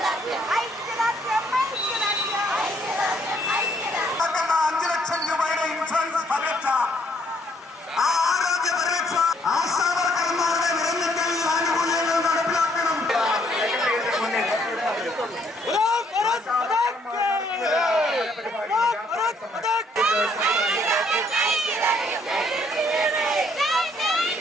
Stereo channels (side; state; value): both; normal; correlation 0.67